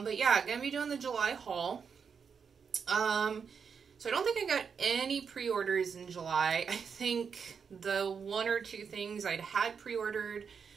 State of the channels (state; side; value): quieter; left; 6.3 dB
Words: yeah, going to be doing the July haul. So I don't think I got any pre-orders in July. I think the one or two things I'd had pre-ordered